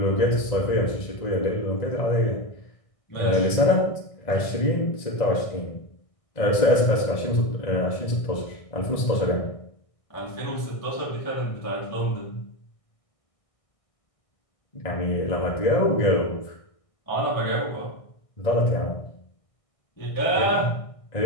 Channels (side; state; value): right; late; 1.6 ms